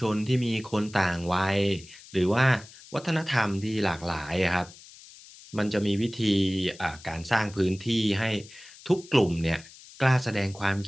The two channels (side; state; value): left; noise; hiss, 20 dB below the sound